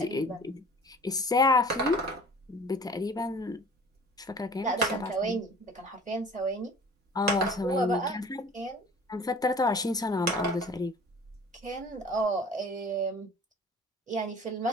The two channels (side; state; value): both; normal; correlation 0.45